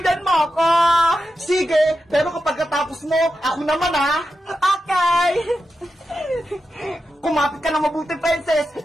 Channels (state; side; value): normal; both; correlation 0.90